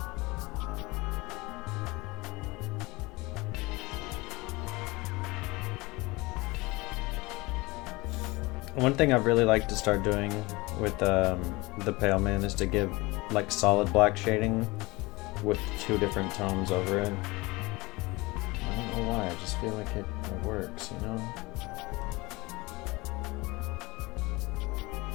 One thing I'd really like to start doing with the Pale Man is to give like solid black shading with 2 different tones over it. I don't know why, I just feel like it works, you know?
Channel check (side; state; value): right; quieter; 23.0 dB